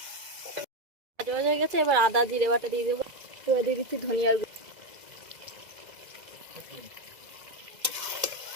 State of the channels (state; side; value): late; left; 2.0 ms